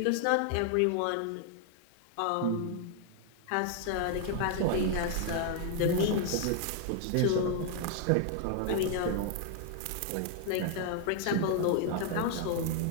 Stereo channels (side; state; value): both; different; correlation 0.00